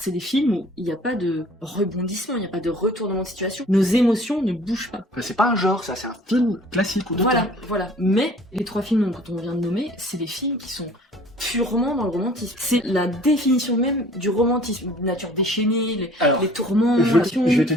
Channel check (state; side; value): normal; both; correlation 0.51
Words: des films où il n'y a pas de rebondissement, il n'y a pas de retournement de situation. Nos émotions ne bougent pas. Enfin, c'est pas un genre, ça, c'est un film classique ou d'auteur. Voilà. Mais les trois films dont on vient de nommer, c'est des films qui sont purement dans le romantisme. C'est la définition même du romantisme. Nature déchaînée, Alors, les tourments, je passion. vais te